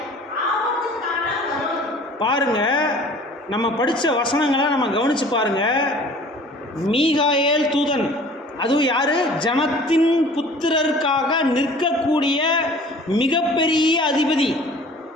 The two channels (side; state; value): both; normal; correlation 0.48